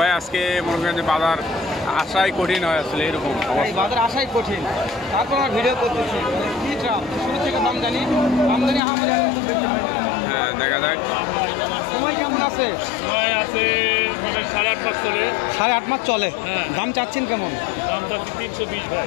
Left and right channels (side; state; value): right; drops out; at 8.8 s